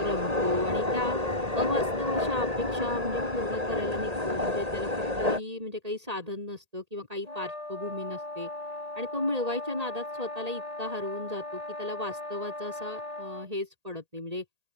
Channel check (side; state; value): left; late; 1.8 ms